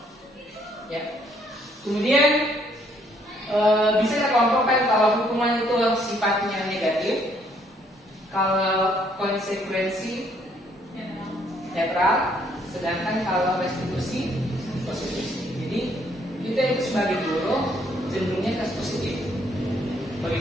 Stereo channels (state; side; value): normal; both; correlation 0.67